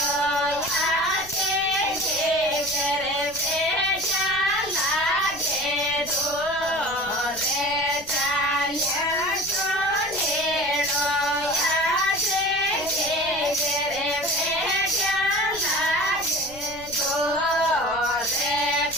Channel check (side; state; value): left; noise; rumble, 20 dB below the sound